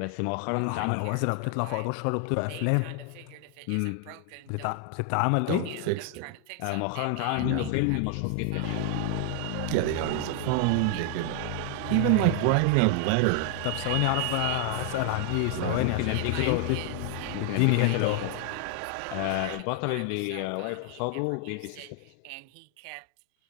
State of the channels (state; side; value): different; both; correlation 0.00